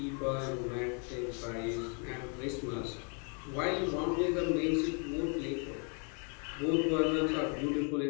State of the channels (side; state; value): right; quieter; 37.2 dB